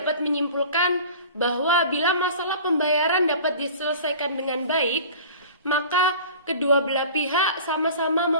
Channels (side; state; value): both; inverted; correlation -0.41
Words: dapat menyimpulkan bahwa bila masalah pembayaran dapat diselesaikan dengan baik, maka kedua belah pihak sama-sama